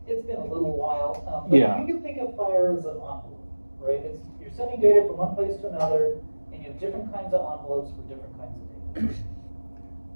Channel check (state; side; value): inverted; both; correlation -1.00